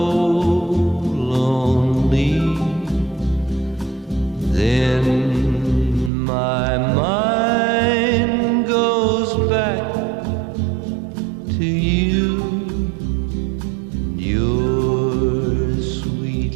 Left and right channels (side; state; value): left; drops out; at 6.1 s